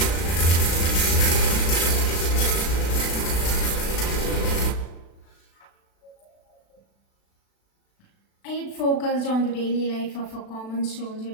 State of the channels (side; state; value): right; late; 36 ms